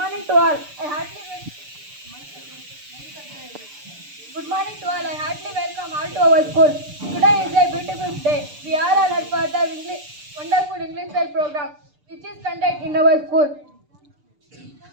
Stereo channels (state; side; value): late; left; 6.7 ms